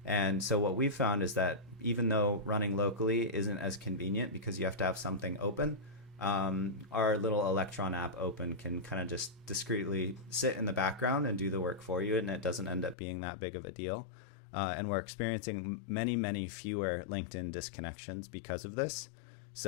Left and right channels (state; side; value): drops out; right; at 13.0 s